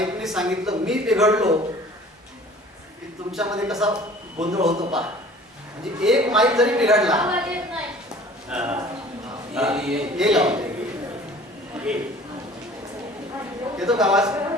सांगितलं मी बिघडलो की तुमच्यामध्ये कसा गोंधळ होतो पहा. म्हणजे एक माईक जरी बिघडला येतो का आवाज?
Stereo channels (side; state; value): both; normal; correlation 0.48